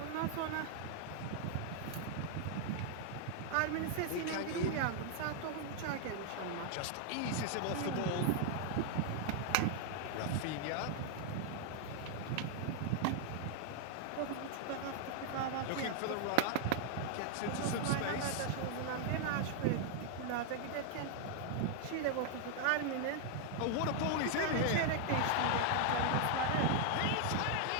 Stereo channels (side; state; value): both; different; correlation 0.00